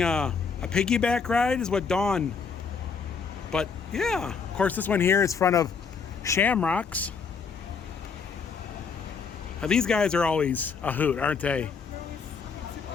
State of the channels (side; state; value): right; quieter; 5.7 dB